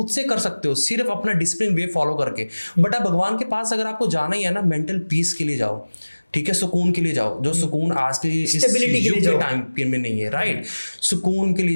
से कर सकते हो, सिर्फ अपना डिसिप्लिन वे फॉलो करके। बट अब भगवान के पास अगर आपको जाना ही है ना, मेंटल पीस के लिए जाओ, ठीक है, सुकून के लिए जाओ, जो सुकून आज के इस युग के टाइम में नहीं है। राइट, सुकून के लिए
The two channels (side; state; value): both; inverted; correlation -1.00